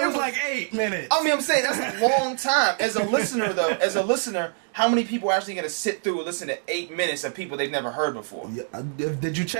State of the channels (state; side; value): silent; left; digital silence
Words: was like 8 minutes. I mean, I'm saying that's a long time. As a listener, though, how many people are actually going to sit through and listen to 8 minutes of people they've never heard before? Yeah, did you